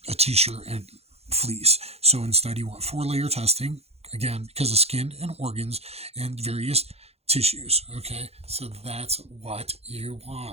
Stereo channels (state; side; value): late; left; 0.30 ms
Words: a t-shirt and fleece. So instead you want 4-layer testing, again, because of skin and organs and various tissues. Okay, so that's what you